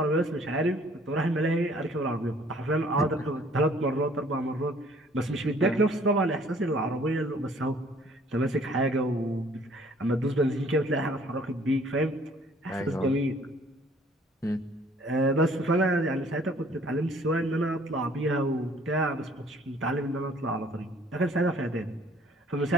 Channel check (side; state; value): both; normal; correlation 0.57